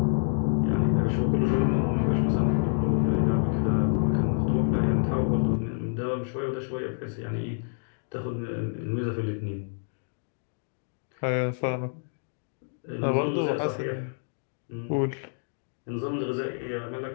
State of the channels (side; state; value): right; silent; digital silence